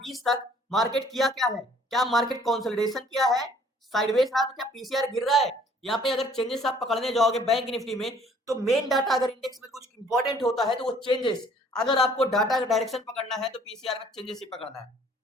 तक मार्केट किया क्या है? क्या मार्केट कंसोलिडेशन किया है? साइडवेज रहा तो क्या पीसीआर गिर रहा है? यहाँ पे अगर चेंजेस आप पकड़ने जाओगे बैंक निफ्टी में, तो मेन डाटा अगर इंडेक्स में कुछ इंपॉर्टेंट होता है तो वो चेंजेस, अगर आपको डाटा का डायरेक्शन पकड़ना है तो पीसीआर में चेंजेस ही पकड़ना है।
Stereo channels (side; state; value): both; normal; correlation 0.57